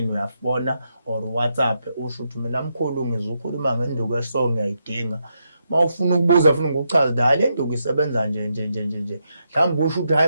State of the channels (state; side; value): inverted; both; correlation -0.82